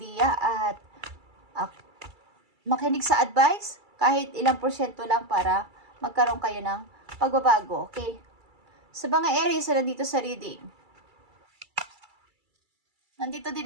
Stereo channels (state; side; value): late; left; 2.3 ms